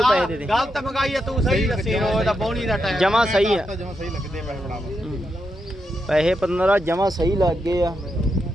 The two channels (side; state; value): both; normal; correlation 0.84